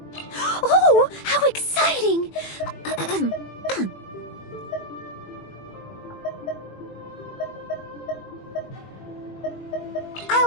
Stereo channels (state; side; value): late; right; 21 ms